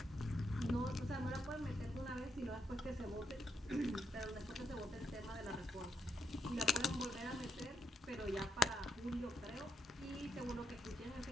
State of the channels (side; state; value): both; normal; correlation 0.81